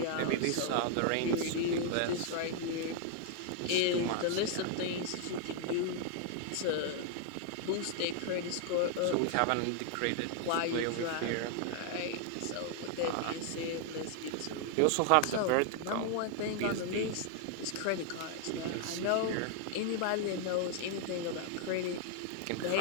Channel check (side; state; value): both; different; correlation 0.00